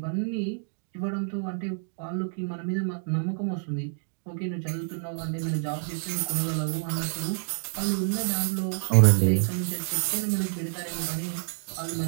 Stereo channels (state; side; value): silent; left; digital silence